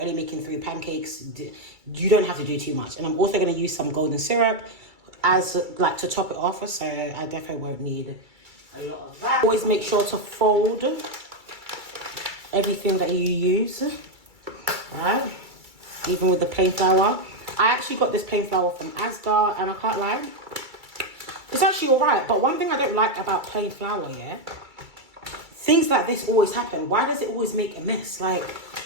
making 3 pancakes. You don't have to do too much. And I'm also going to use some golden syrup as like to top it off, so I definitely won't need a lot of that. Always make sure to fold everything that you use, right? Even with the plain flour. I actually got this plain flour from Asda, and I can't lie, it's actually all right. But one thing I don't like about plain flour, yeah, things like this always happen. Why does it always make a mess? Like,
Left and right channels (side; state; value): left; late; 2.3 ms